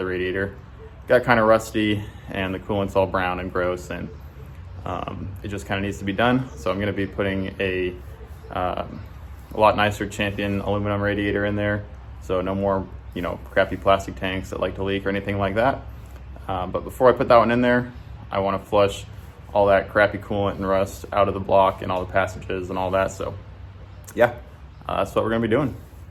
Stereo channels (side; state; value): both; identical; correlation 1.00